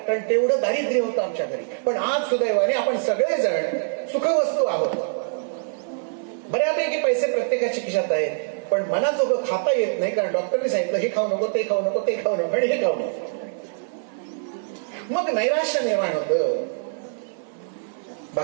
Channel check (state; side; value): silent; left; 57 dB below the other